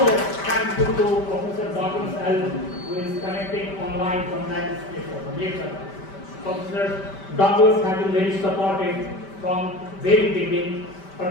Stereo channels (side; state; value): right; late; 5.1 ms